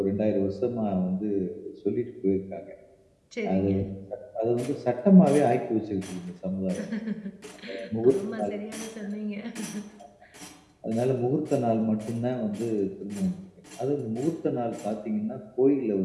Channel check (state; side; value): identical; both; correlation 1.00